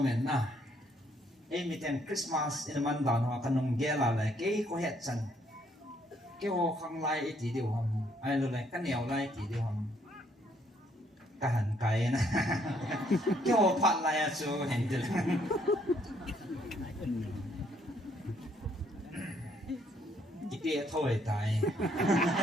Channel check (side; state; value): both; normal; correlation 0.68